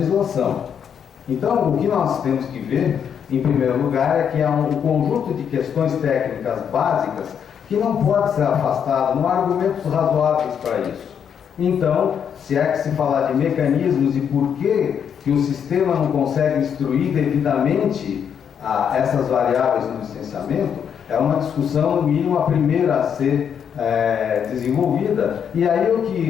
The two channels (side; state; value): right; quieter; 7.9 dB